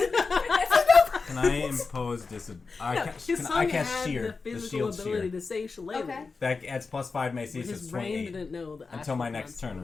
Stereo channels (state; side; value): quieter; right; 4.4 dB